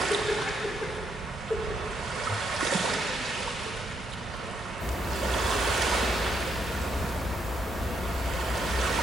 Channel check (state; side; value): normal; both; correlation 0.76